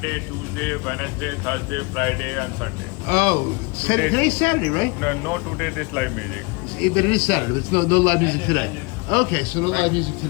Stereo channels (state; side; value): quieter; right; 28.3 dB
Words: Tuesday, Wednesday, Thursday, Friday, and Sunday. Oh, today's Saturday, right? No, today this live music. But it is Saturday. There's no live music today. Okay, so no live music